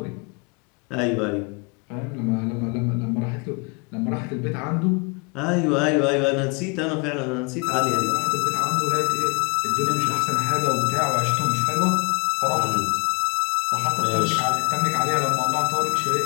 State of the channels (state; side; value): quieter; right; 33.1 dB